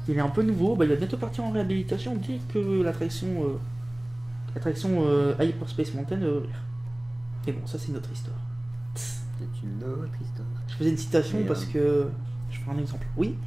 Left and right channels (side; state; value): right; noise; rumble, 25 dB below the sound